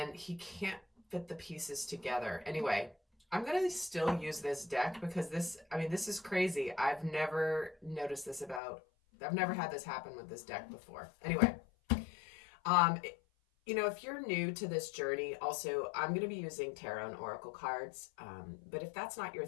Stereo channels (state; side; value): drops out; right; at 8.6 s